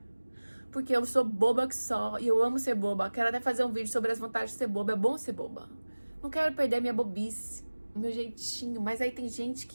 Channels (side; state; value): both; inverted; correlation -1.00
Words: Porque eu sou boba que só, e eu amo ser boba. Quero até fazer um vídeo sobre as vantagens de ser boba. É bom ser boba. Não quero perder a minha bobice, o meu jeitinho. Mas aí tem gente